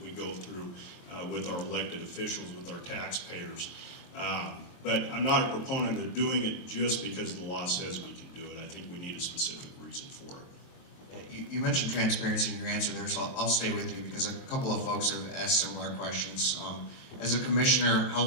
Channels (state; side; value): late; right; 23 ms